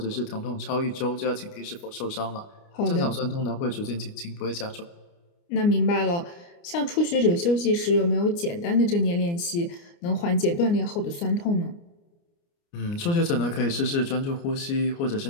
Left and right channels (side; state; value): right; late; 29 ms